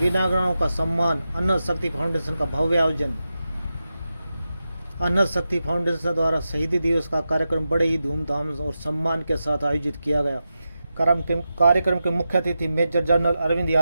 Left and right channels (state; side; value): inverted; both; correlation -0.91